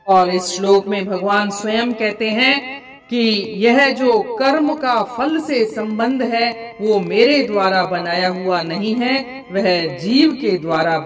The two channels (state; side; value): identical; both; correlation 1.00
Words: और इस श्लोक में भगवान स्वयं कहते हैं कि यह जो कर्म का फल से संबंध है वो मेरे द्वारा बनाया हुआ नहीं है, वह जीव के द्वारा